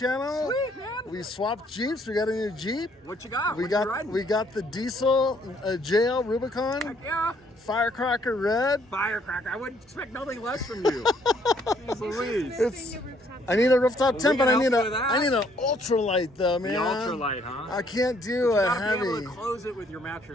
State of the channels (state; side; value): normal; both; correlation 0.66